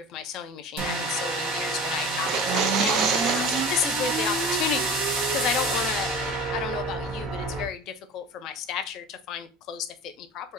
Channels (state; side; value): normal; both; correlation 0.37